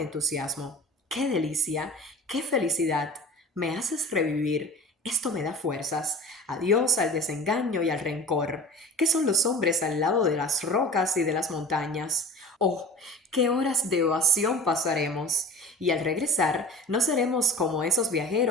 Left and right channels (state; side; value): normal; both; correlation 0.38